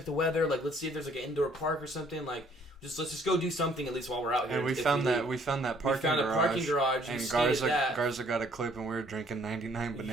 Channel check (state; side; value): normal; both; correlation 0.61